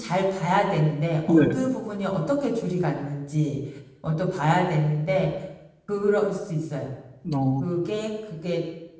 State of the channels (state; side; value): identical; both; correlation 1.00